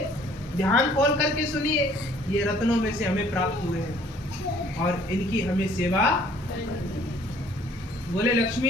ध्यान खोल करके सुनिए, ये रत्नों में से हमें प्राप्त हुए हैं और इनकी हमें सेवा। बोले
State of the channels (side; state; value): both; normal; correlation 0.58